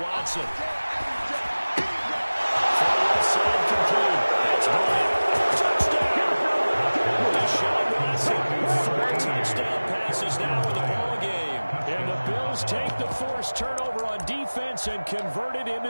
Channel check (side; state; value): both; inverted; correlation -1.00